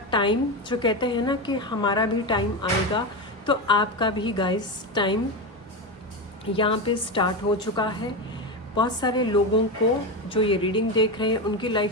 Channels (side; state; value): both; normal; correlation 0.16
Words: टाइम, जो कहते हैं ना कि हमारा भी टाइम आएगा, तो आपका भी गाइस टाइम यहाँ पे स्टार्ट हो चुका है। बहुत सारे लोगों को जो ये रीडिंग देख रहे हैं, उनकी